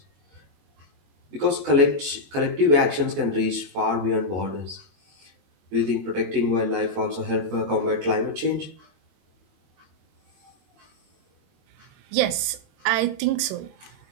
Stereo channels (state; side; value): late; left; 22 ms